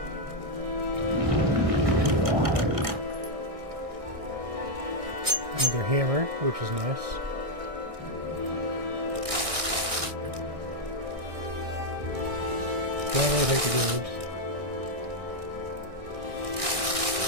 Another hammer, which is nice. Definitely take the gold.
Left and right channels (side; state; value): left; late; 1.6 ms